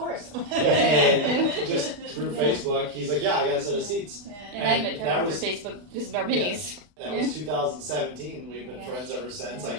And just through Facebook, he's like, yeah, I got a set of seats. And I And met that Trevor was- through Facebook because of our minis. That was 2017. We've been Yeah. friends ever since. Like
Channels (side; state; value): left; late; 40 ms